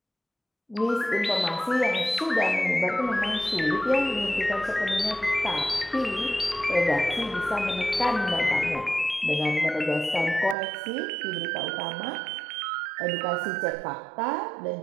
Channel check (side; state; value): left; drops out; at 10.6 s